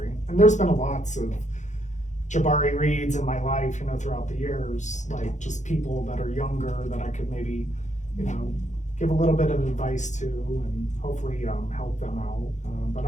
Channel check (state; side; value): late; right; 0.35 ms